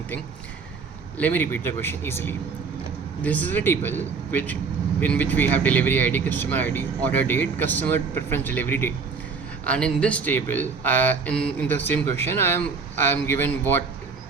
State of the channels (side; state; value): left; quieter; 5.0 dB